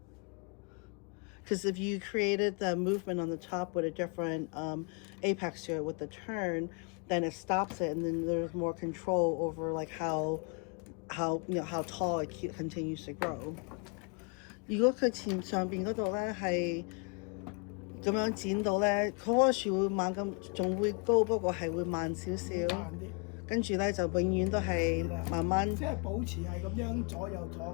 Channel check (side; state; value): right; quieter; 34.9 dB